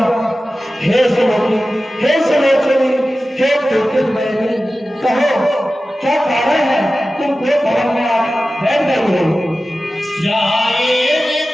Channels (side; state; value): both; normal; correlation 0.95